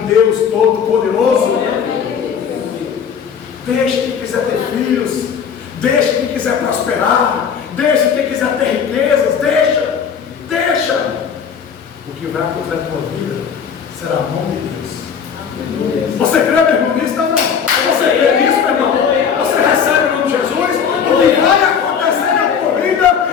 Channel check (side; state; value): right; quieter; 7.1 dB